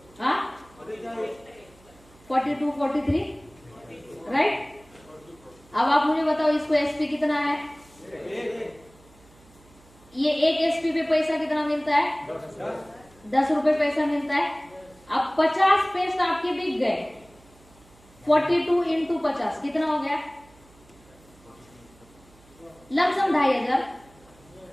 हाँ, 42, 43, राइट। अब आप मुझे बताओ इसको एसपी कितना है? ये एक एसपी पे पैसा कितना मिलता है? 10 रुपए पैसा मिलता है। अब 50 पेस्ट आपके बिक गए, 42 इंटू 50 कितना हो गया? लमसम 2500।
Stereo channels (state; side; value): noise; right; hum, 27 dB below the sound